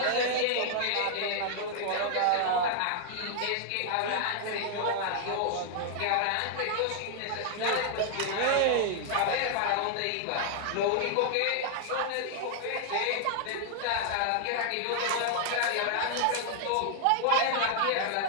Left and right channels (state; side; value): different; both; correlation 0.00